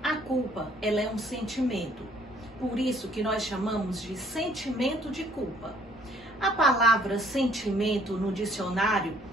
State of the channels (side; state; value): both; normal; correlation 0.61